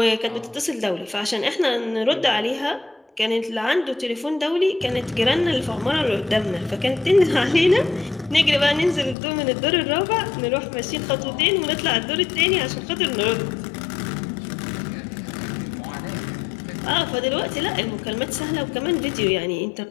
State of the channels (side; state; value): right; drops out; at 9.2 s